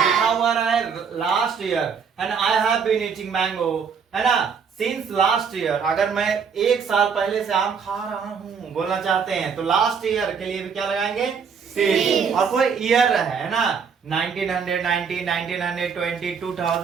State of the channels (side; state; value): left; quieter; 6.3 dB